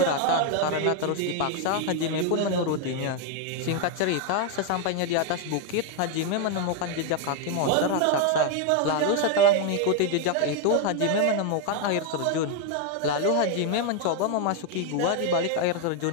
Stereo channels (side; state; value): both; different; correlation 0.01